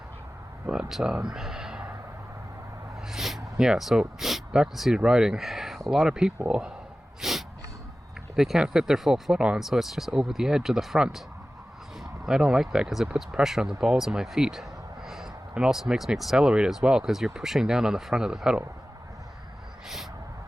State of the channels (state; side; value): normal; both; correlation 0.96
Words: But, yeah, so back to seated riding. A lot of people, they can't fit their full foot on, so it's just over the edge of the front. I don't like that because it puts pressure on the balls of my feet. And also makes me accelerate as well because you're pushing down on the front of the pedal.